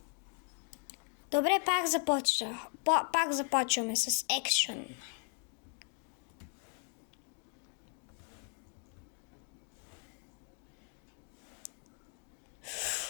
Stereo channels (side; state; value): right; quieter; 38.0 dB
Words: Добре, пак започваме с екшън.